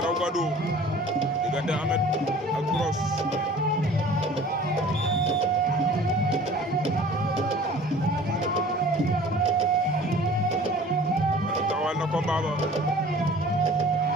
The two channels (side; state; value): both; normal; correlation 0.47